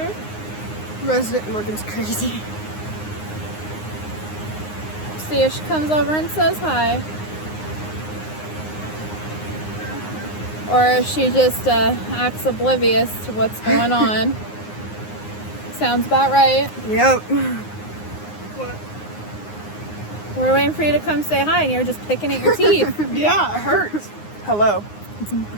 Resident Morgan's crazy. See if she comes over and says hi. Or if she just acts oblivious to what's going on. Sounds about right. Yep. We're waiting for you to come say hi and you're just picking at your teeth. Yeah, it hurts. Hello.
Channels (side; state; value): right; late; 9.6 ms